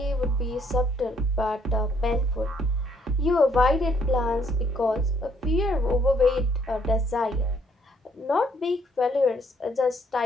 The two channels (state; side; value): normal; both; correlation 0.67